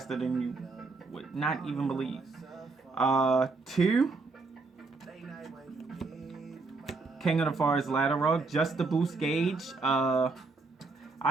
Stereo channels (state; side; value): quieter; left; 3.9 dB